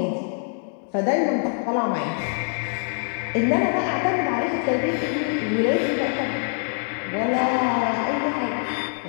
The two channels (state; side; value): silent; right; 57 dB below the other